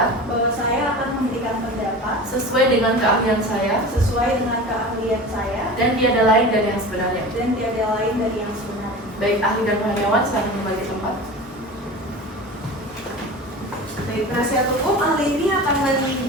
bahwa saya akan memberikan pendapat sesuai dengan keahlian saya sesuai dengan keahlian saya dan tiada lain dari yang sebenarnya. dan tiada lain dari yang sebenarnya. Baik, ahli dan karyawan silakan kembali ke tempat. Baik, penasihat hukum, ahli ini akan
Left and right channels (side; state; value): both; normal; correlation 0.33